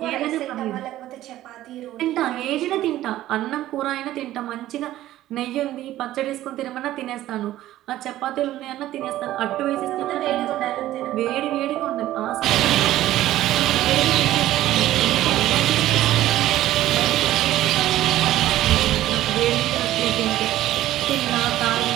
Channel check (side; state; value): left; quieter; 14.3 dB